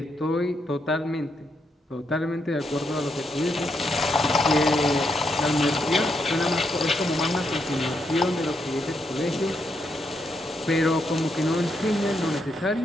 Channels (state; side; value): normal; both; correlation 0.79